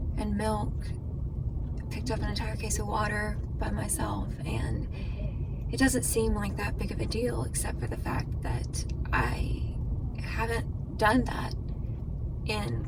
and milk, picked up an entire case of water by myself, and it doesn't seem like that big of a deal, except for the fact that I haven't done that in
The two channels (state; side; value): identical; both; correlation 1.00